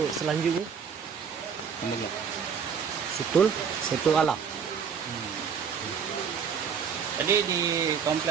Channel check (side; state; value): left; quieter; 6.8 dB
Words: selanjutnya Kemudian Situl Alam. jadi di